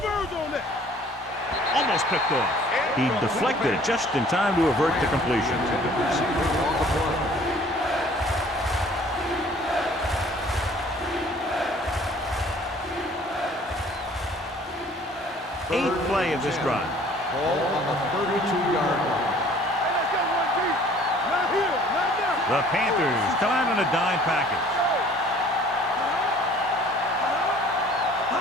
on that. Almost picked off. He deflected it just in time to avert the completion. Eighth play of this drive. Ball on the 32-yard line. Hey, let's go, one deep. Not here, not there. The Panthers come out in a dime package.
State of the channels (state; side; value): normal; both; correlation 0.53